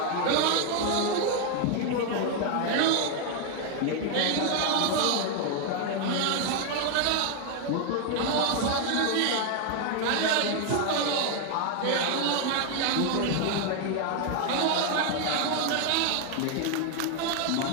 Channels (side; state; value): both; different; correlation 0.01